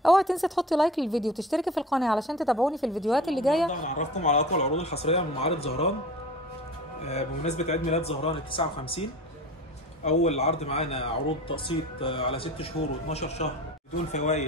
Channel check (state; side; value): normal; both; correlation 0.37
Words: اوعي تنسي تحطي لايك للفيديو وتشتركي في القناه علشان تتابعوني في الفيديوهات اللي جايه. هنعرفكم على اقوى العروض الحصريه من معارض زهران بمناسبه عيد ميلاد زهران ال 59. اول عرض معانا عروض تقسيط على 6 شهور و12 شهر بدون